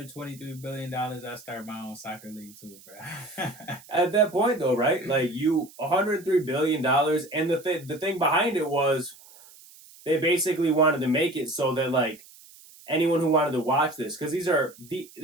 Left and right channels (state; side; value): noise; right; hiss, 22 dB below the sound